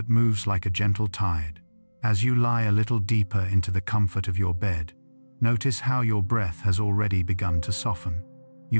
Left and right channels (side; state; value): both; inverted; correlation -1.00